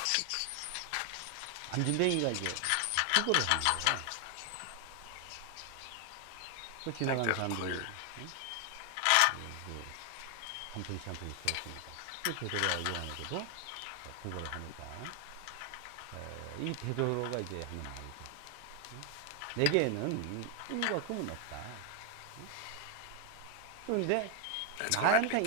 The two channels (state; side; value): different; both; correlation 0.00